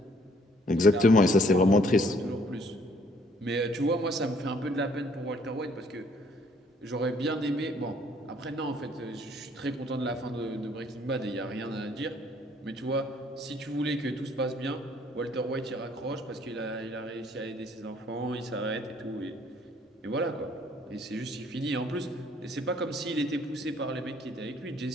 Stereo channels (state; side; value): normal; both; correlation 0.62